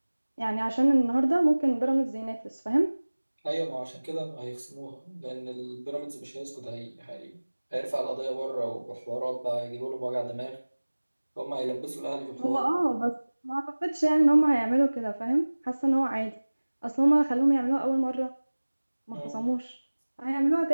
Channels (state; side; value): inverted; both; correlation -1.00